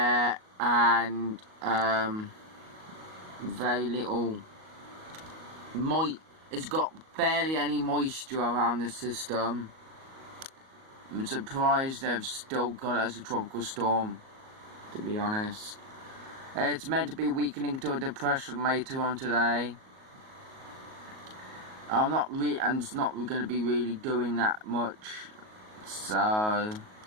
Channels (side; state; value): left; late; 38 ms